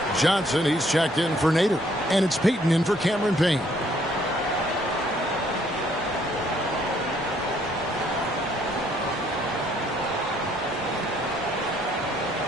Johnson, he's checked in for Nader. And it's Payton in for Cameron Payne.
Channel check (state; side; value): normal; both; correlation 0.66